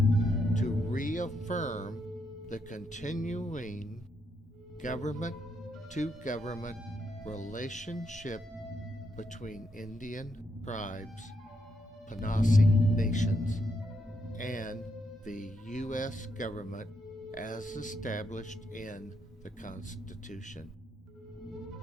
to reaffirm the continuing government-to-government relationship between Indian tribes, Panasi nations, and the U.S. government as established in the Constitution.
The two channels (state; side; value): normal; both; correlation 0.79